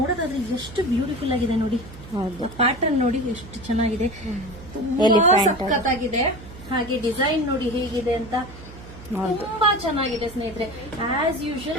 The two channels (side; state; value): right; noise; hum, 16 dB below the sound